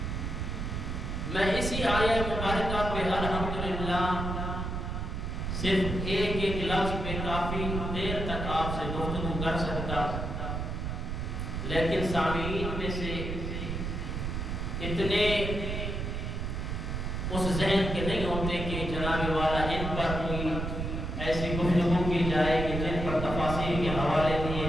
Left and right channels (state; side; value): noise; right; rumble, 3 dB below the sound